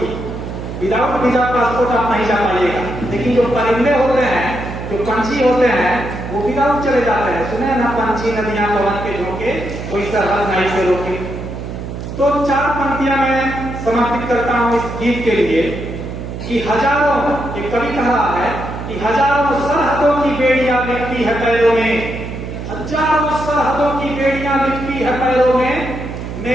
की। विदाउट वीजा पासपोर्ट आप नहीं जा पाइएगा। लेकिन जो परिंदे होते हैं, जो पंछी होते हैं, वो विदाउट चले जाते हैं। सुने ना, पंछी नदियां पवन के झोंके, कोई सरहद नहीं से रोके। तो 4 पंक्तियां मैं समर्पित करता हूं इस गीत के लिए कि हजारों, एक कवि कह रहा है कि हजारों सरहदों की बेड़ियां लिपटी है पैरों में, हजारों सरहदों की बेड़ियां लिपटी है पैरों में,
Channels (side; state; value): right; noise; hum, 8 dB below the sound